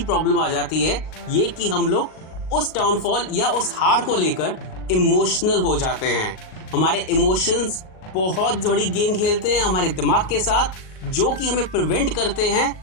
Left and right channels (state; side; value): late; right; 38 ms